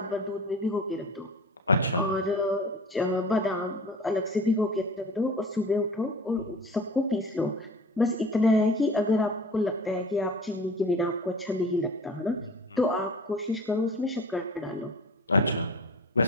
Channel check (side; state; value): both; normal; correlation 0.38